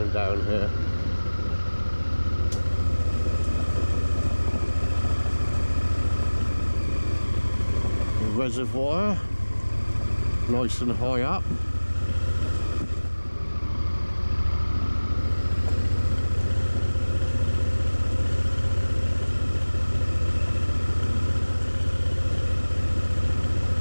down here. The reservoir, nice and high up.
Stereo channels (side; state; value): both; inverted; correlation -1.00